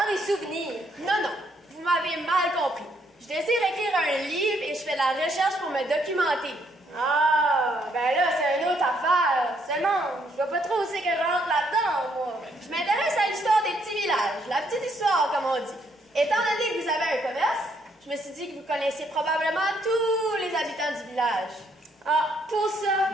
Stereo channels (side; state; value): both; normal; correlation 0.71